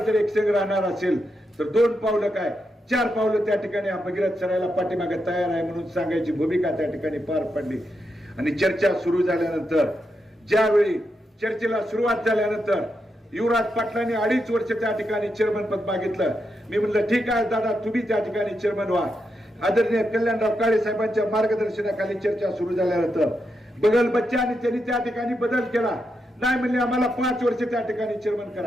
जर एकसंघ राहणार असेल तर 2 पावलं काय 4 पावलं त्या ठिकाणी हा भगीरथ सरायला पाठीमागे तयार आहे म्हणून सांगायची भूमिका त्या ठिकाणी पार पडली. आणि चर्चा सुरू झाल्यानंतर ज्यावेळी चर्चेला सुरुवात झाल्यानंतर युवराज पाटलांनी 2.5 वर्ष त्या ठिकाणी चेअरमन पद मागितलं. मी म्हणलं ठीक आहे दादा, तुम्ही त्या ठिकाणी चेअरमन व्हा. आदरणीय कल्याणराव काळे साहेबांच्या मार्गदर्शनाखाली चर्चा सुरू झाल्यानंतर बगल बच्चा आणि त्यांनी त्या ठिकाणी बदल केला. नाही म्हणले आम्हाला 5 वर्ष त्या ठिकाणी चेअरमन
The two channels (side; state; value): both; normal; correlation 0.84